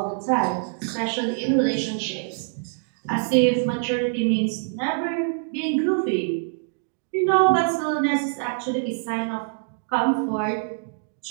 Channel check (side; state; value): left; silent; digital silence